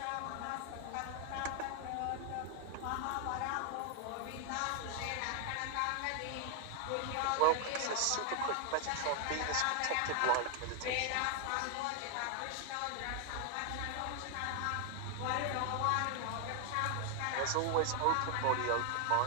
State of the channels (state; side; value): different; both; correlation 0.00